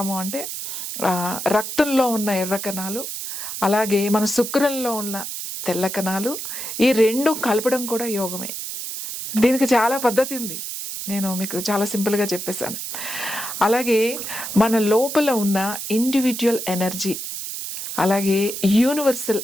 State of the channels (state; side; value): noise; right; hiss, 6 dB below the sound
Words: అంటే, రక్తంలో ఉన్న ఎర్ర కణాలు, అలాగే మన శుక్రంలో ఉన్న తెల్ల కణాలు, ఈ రెండు కలపడం కూడా యోగమే. దీనికి చాలా పద్ధతి ఉంది, నేను మీకు చాలా సింపుల్గా చెప్పేశాను. అలాగే మన లోపల ఉన్న ఇండివిజువల్ ఎనర్జీ, అలాగే యూనివర్సల్